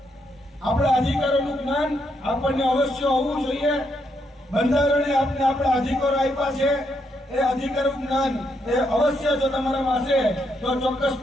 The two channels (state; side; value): normal; both; correlation 0.78